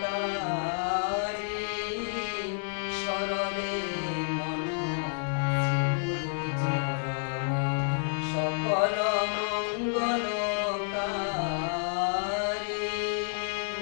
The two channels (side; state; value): right; silent; digital silence